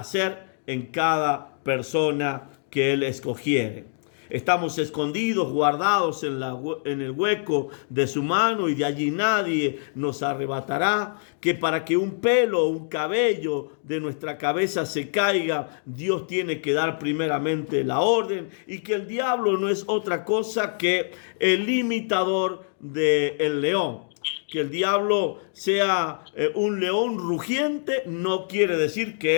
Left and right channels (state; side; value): silent; right; digital silence